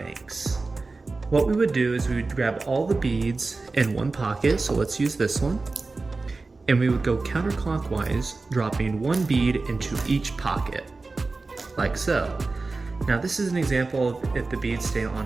What we would do is we would grab all the beads in one pocket, so let's use this one, and we would go counterclockwise, dropping one bead into each pocket, like so. Now this is an example of if the beads stay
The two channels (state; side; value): quieter; left; 3.7 dB